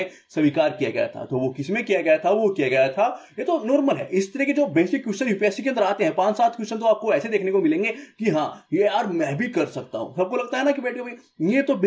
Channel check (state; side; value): identical; both; correlation 1.00